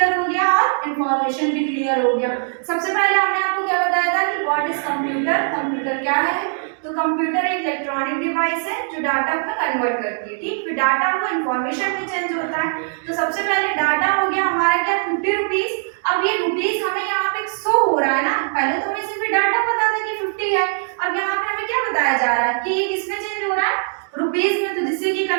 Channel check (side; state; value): left; silent; 62 dB below the other